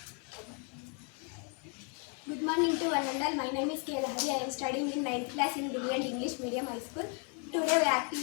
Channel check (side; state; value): right; quieter; 36.1 dB